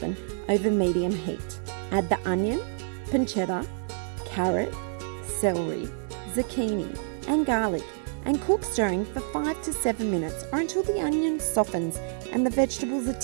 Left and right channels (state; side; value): silent; left; 55 dB below the other